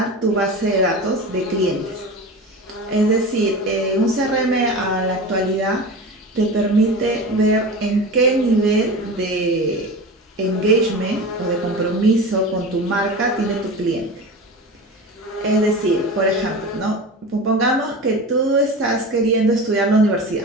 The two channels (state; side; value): normal; both; correlation 0.30